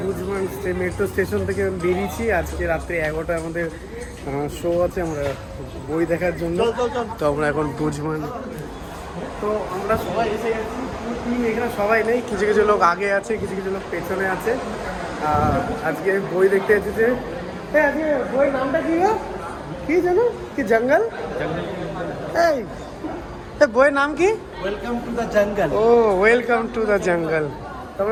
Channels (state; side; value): identical; both; correlation 1.00